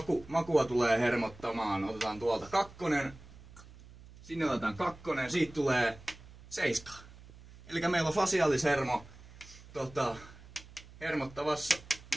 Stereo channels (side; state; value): right; noise; hum, 20 dB below the sound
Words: makua tulee hermottamaan. Otetaan tuolta 2, sinne otetaan 2, siitä tulee 7. Eli meillä on fasiaalishermo